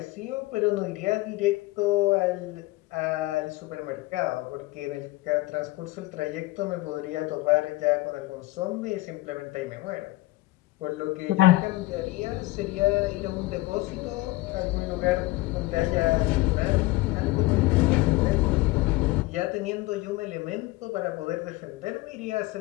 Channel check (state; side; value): quieter; right; 19.7 dB